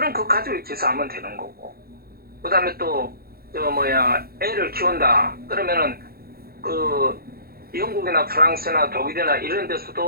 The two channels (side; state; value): left; late; 0.44 ms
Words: 그 가족이 기사하면 되는 거고. 그 다음에 또 애를 키운다. 그러면은 영국이나 프랑스나 독일이나 이런